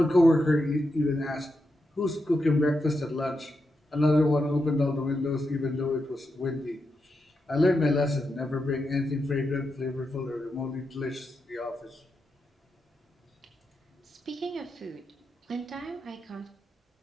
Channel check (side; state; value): both; normal; correlation 0.86